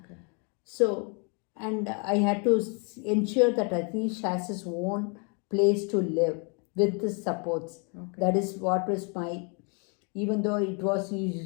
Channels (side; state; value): right; quieter; 36.0 dB